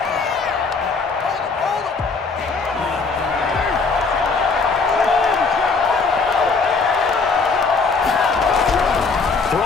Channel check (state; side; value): quieter; right; 4.5 dB